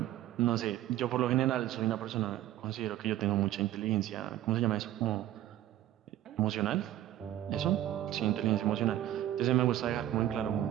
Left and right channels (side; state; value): left; quieter; 13.2 dB